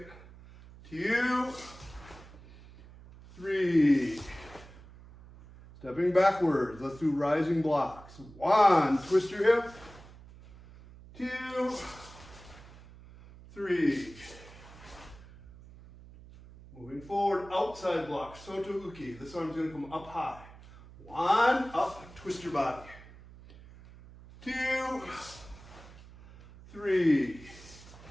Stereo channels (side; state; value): right; noise; hum, 19 dB below the sound